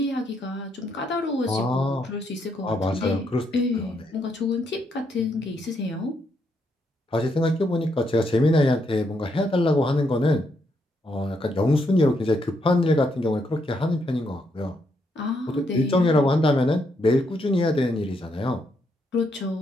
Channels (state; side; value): normal; both; correlation 0.77